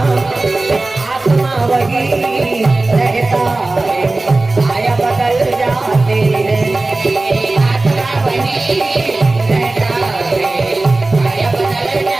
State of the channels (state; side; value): quieter; left; 3.1 dB